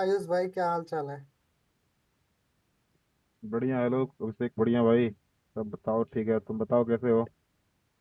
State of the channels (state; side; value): identical; both; correlation 1.00